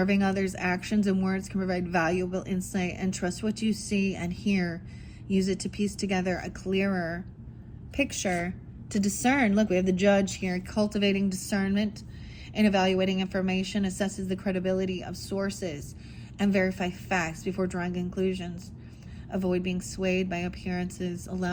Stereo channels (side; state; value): both; identical; correlation 1.00